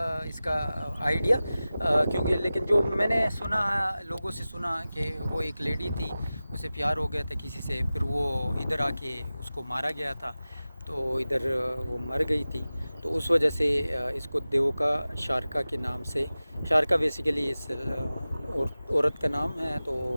इसका आइडिया, क्योंकि लेकिन जो मैंने सुना है, लोगों से सुना कि वो एक लेडी थी, उसे प्यार हो गया था किसी से, फिर वो इधर आके उसको मारा गया था, तो इधर वो मर गई थी। तो उस वजह से इसको देवोका शारका के नाम से, शारका बेसिकली इस औरत का नाम है, तो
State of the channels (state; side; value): inverted; both; correlation -0.96